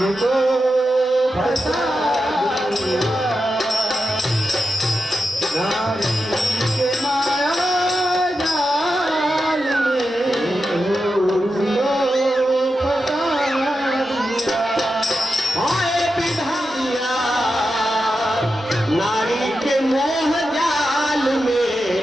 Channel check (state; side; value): normal; both; correlation 0.89